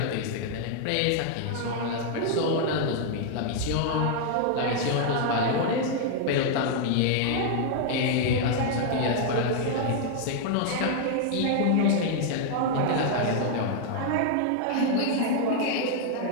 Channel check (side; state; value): both; different; correlation 0.00